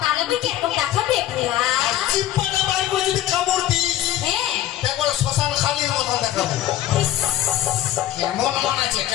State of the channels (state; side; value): quieter; right; 13.2 dB